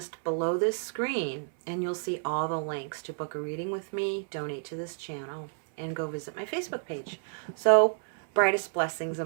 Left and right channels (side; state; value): left; silent; 58 dB below the other